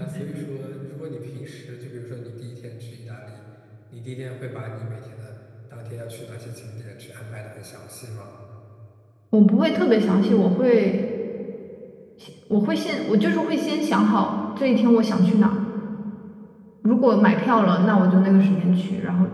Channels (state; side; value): identical; both; correlation 1.00